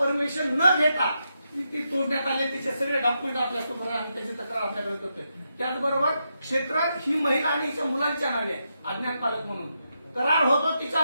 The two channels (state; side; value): inverted; both; correlation -0.84